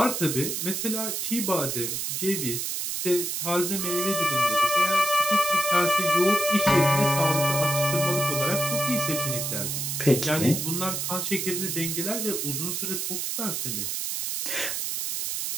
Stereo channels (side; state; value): right; noise; hiss, 2 dB below the sound